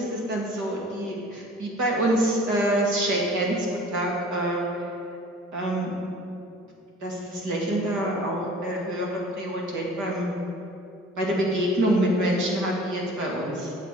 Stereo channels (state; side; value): normal; both; correlation 0.46